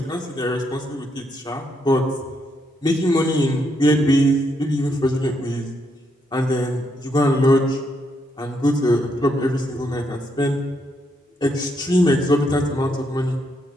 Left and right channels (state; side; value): normal; both; correlation 0.77